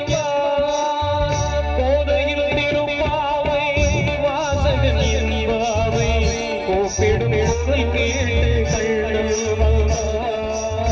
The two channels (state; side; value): identical; both; correlation 1.00